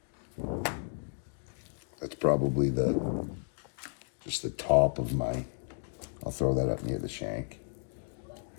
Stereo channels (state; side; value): silent; right; digital silence